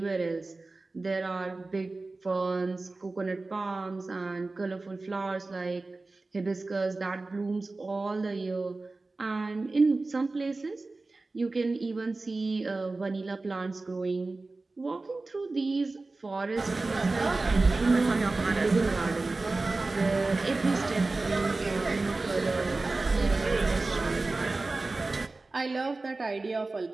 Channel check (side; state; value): left; quieter; 3.4 dB